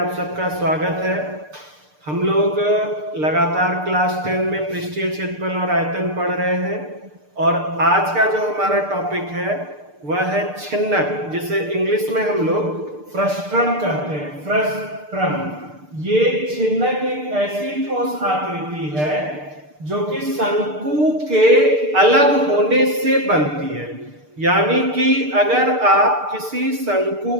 सबका स्वागत है। हम लोग लगातार क्लास 10 में पृष्ठीय क्षेत्रफल और आयतन पढ़ रहे हैं और आज का जो हमारा टॉपिक है वह है छिन्नक, जिसे इंग्लिश में हम लोग फ्रस्ट्रम कहते हैं। फ्रस्ट्रम ये छिन्नक एक ऐसी ठोस आकृति है जो कि शंकु के अलग होने से बनती है। यानी कि अगर आप किसी शंकु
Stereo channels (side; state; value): left; late; 6.7 ms